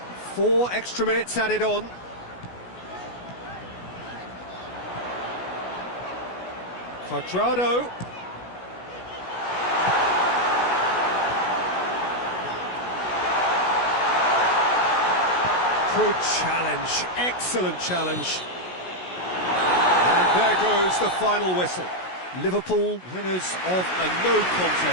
4 extra minutes added on. Cuadrado. Good challenge, excellent challenge. And there goes the final whistle. Liverpool, winners of a no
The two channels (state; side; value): late; right; 16 ms